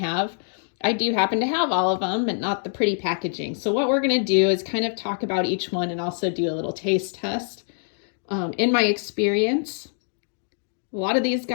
I do happen to have all of them, but not the pretty packaging. So what we're going to do is kind of talk about each one and also do a little taste test. In my experience, a lot of these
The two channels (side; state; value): right; silent; digital silence